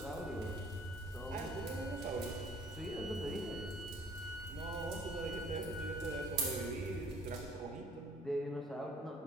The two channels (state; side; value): normal; both; correlation 0.56